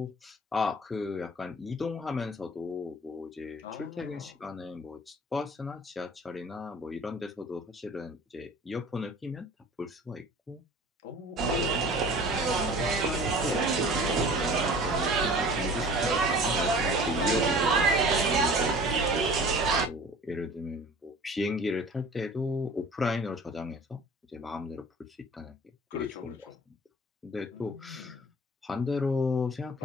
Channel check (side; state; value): both; normal; correlation 0.44